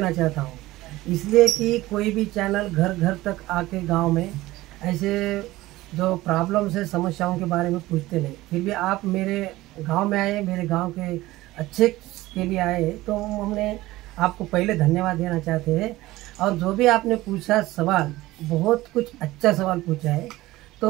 चाहता हूँ, इसलिए कि कोई भी चैनल घर घर तक आके गांव में ऐसे जो प्रॉब्लम्स है, समस्याओं के बारे में पूछते नहीं, फिर भी आप मेरे गांव में आए, मेरे गांव के अच्छे के लिए आए, तो हमने आपको पहले धन्यवाद देना चाहते हैं। और जो भी आपने पूछा सवाल, बहुत कुछ अच्छा सवाल पूछा है।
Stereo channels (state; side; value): quieter; left; 17.8 dB